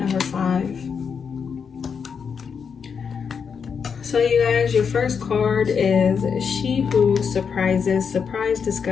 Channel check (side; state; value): right; quieter; 6.4 dB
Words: 5. So you guys, your first card is She Who Surprises, Surprise,